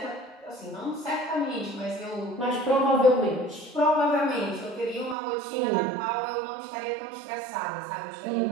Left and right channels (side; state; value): left; drops out; at 5.2 s